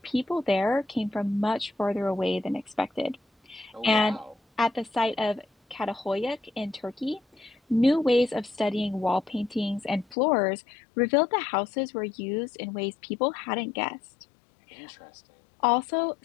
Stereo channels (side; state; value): right; drops out; at 10.2 s